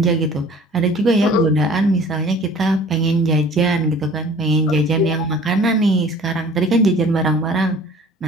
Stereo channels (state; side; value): normal; both; correlation 0.48